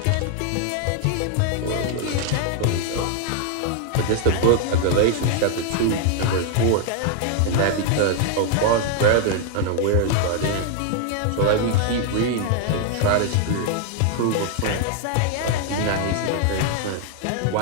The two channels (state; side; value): different; both; correlation 0.00